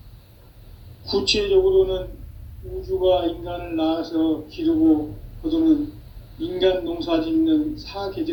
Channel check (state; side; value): identical; both; correlation 1.00